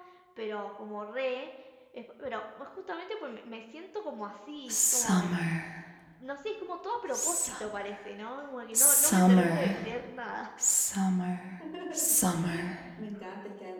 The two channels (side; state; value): both; identical; correlation 1.00